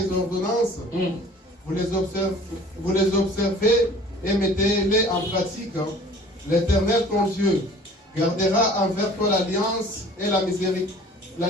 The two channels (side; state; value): both; normal; correlation 0.48